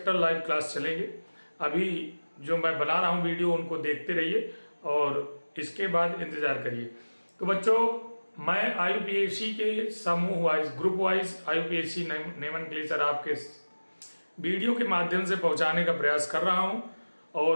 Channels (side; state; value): both; inverted; correlation -1.00